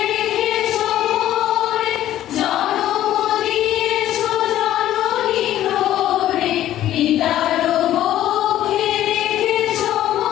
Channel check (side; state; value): right; quieter; 12.9 dB